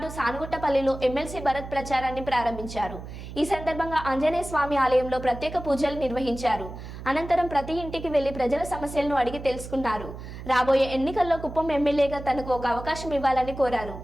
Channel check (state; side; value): noise; right; hum, 11 dB below the sound